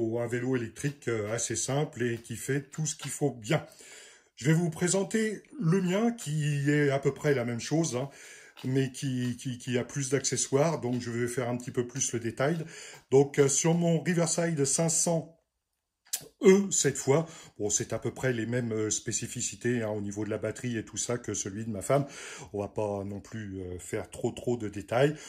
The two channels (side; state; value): both; identical; correlation 1.00